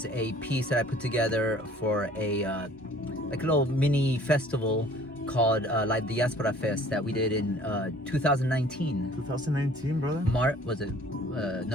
a piece that I put together for a like a little mini festival called like the Diaspora Fest that we did in 2019. 2019, brother? Was it?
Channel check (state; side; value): normal; both; correlation 0.52